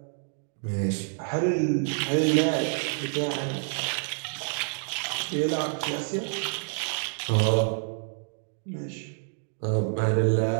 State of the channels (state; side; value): silent; left; 59 dB below the other